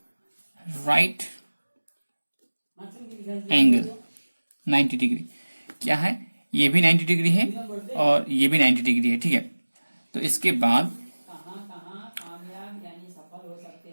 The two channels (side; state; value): both; inverted; correlation -1.00